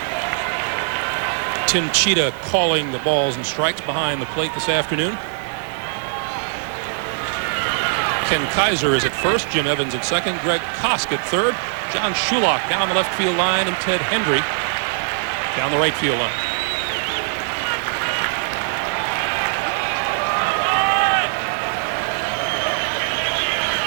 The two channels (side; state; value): left; silent; 57 dB below the other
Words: Tim Cheetah calling the balls and strikes behind the plate this afternoon. Ken Kaiser is at first, Jim Evans at second, Greg Kosk at third, John Shulock down the left field line, and Ted Hendry down the right field line.